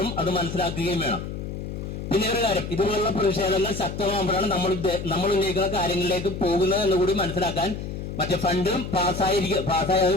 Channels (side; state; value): left; noise; hum, 7 dB below the sound